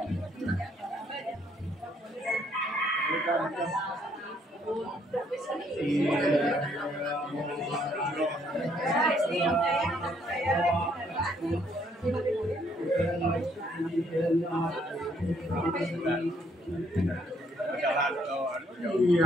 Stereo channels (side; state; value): both; normal; correlation 0.68